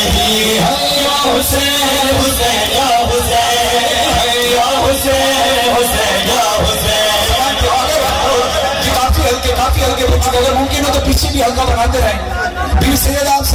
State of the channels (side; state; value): both; identical; correlation 1.00